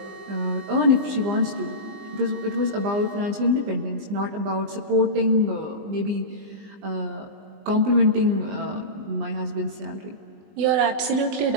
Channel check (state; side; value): late; left; 20 ms